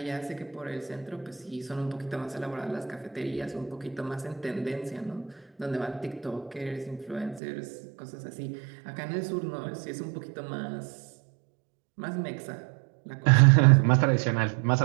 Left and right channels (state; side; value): drops out; left; at 7.4 s